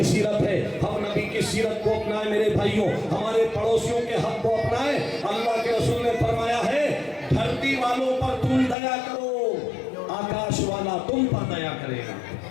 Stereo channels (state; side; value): drops out; right; at 8.8 s